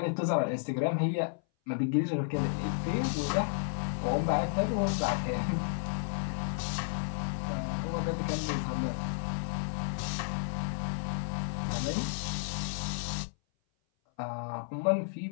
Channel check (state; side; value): silent; right; 56 dB below the other